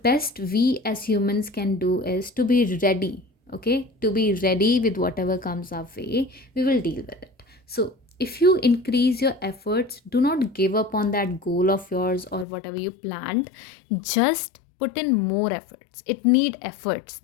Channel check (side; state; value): right; drops out; at 12.5 s